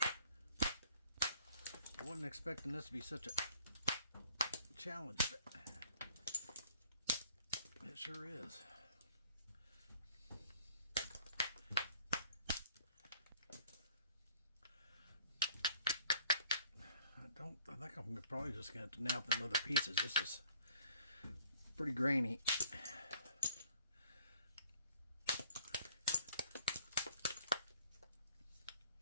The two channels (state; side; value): inverted; both; correlation -0.57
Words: I wasn't expecting this to be such a challenge, but it sure is. I think I'm probably just going to have to nap them other pieces. This is pretty grainy.